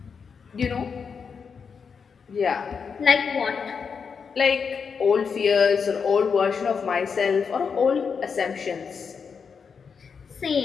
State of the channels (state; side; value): quieter; right; 6.0 dB